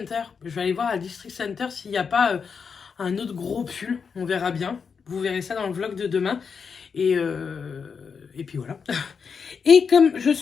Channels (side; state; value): right; quieter; 5.9 dB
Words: Je vais aller voir à District Center s'il n'y a pas un autre gros pull. On verra bien. Vous verrez ça dans le vlog de demain. Et puis voilà. Et comme je